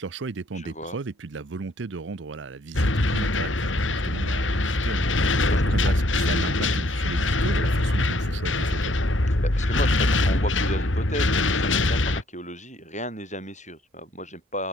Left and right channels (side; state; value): both; normal; correlation 0.66